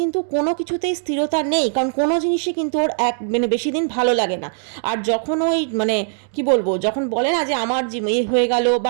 কোনো কিছুতেই স্থিরতা নেই, কারণ কোনো জিনিসই কিন্তু ওর মানে বেশি দিন ভালো লাগে না। আর যখন ওই মানে কি বলবো, যখন বলে না যে আমার হয়ে গেল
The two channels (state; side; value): silent; left; digital silence